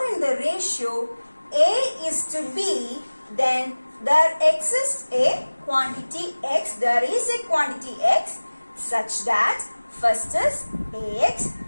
in the ratio A is to B, then there exists a quantity x, there is a quantity x such that First is ax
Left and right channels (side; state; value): both; inverted; correlation -1.00